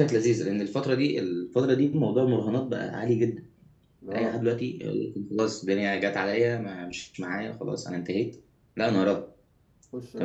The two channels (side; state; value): both; identical; correlation 1.00